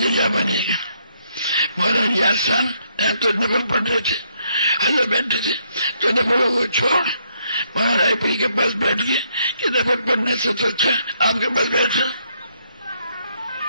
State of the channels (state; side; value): inverted; both; correlation -0.73